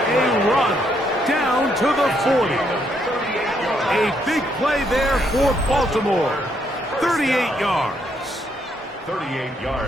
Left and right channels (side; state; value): both; normal; correlation 0.74